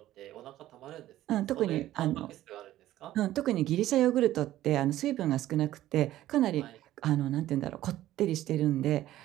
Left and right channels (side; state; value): left; quieter; 14.2 dB